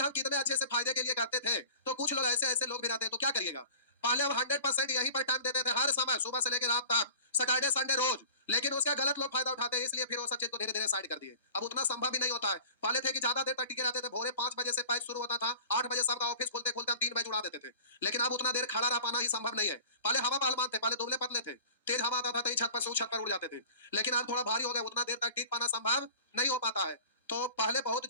हम कितने अच्छे से फायदे के लिए करते थे, तो कुछ लोग ऐसे ऐसे लोग भी रहते हैं, तो क्या करिएगा। पहले हम 100% यहीं पर टाइम देते थे, हर समय सुबह से लेकर रात तक, सैटरडे संडे रोज, लेकिन उसका गलत लोग फायदा उठाते हैं, इसलिए फिर वो सब चीज को धीरे धीरे साइड कर दिए। अब उतना संभव भी नहीं होता है। पहले थे कि ज्यादा देर तक टिके रहते थे, भोरे 5 बजे से पैच शुरू होता था, 8 बजे सबका ऑफिस खोलते खोलते हम 3 बजे उड़ा देते थे, लेकिन अब उतना देर खड़ा रह पाना ही संभव नहीं है। पहले हवा पहलवान थे, पहले दुबले पतले थे, तेज हवा आता था तो छत पर से उस छत पर उड़ जाते थे, लेकिन अब थोड़ा भारी हो गया, उतना देर तक टिक पाना संभव नहीं हो पाता है। तो पहले बहुत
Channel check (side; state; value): both; inverted; correlation -0.40